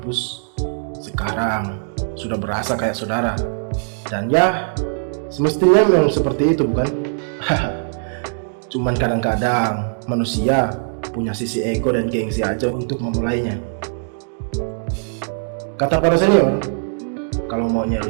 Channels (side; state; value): left; silent; digital silence